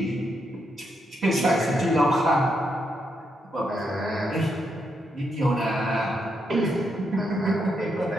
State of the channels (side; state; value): both; normal; correlation 0.80